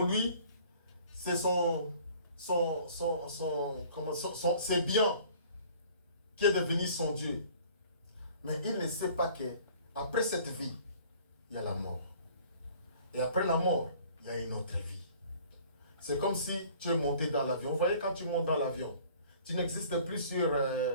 lui, c'est c'est bien qui est devenu son Dieu. Mais il ne sait pas que après cette vie, il y a la mort. Et après la mort, il y a une autre vie. C'est comme si tu es monté dans l'avion. Vous voyez, quand tu montes dans l'avion, tu n'existes plus sur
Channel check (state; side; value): inverted; both; correlation -0.52